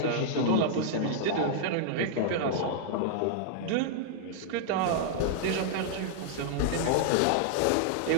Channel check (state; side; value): different; both; correlation -0.01